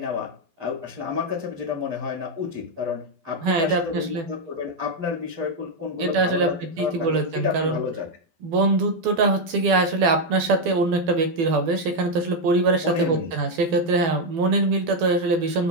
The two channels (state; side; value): late; left; 12 ms